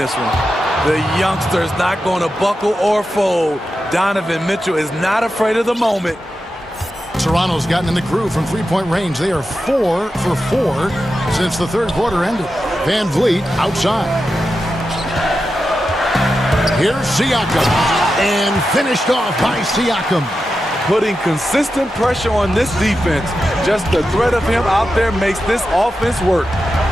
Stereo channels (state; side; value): normal; both; correlation 0.90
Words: one. The youngster is not going to buckle or fold. Donovan Mitchell is not afraid of the moment. Toronto's gotten in the groove from three-point range. They are 4 for 4 since the third quarter ended. Van Vliet outside. Here's Siakam. And finished off by Siakam. Putting consistent pressure on this defense. Just the threat of him out there makes this offense work.